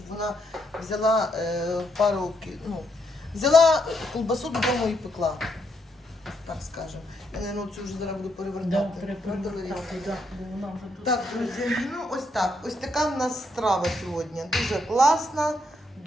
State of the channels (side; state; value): both; normal; correlation 0.77